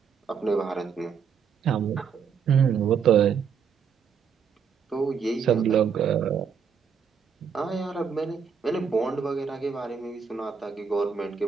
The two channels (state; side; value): quieter; left; 6.7 dB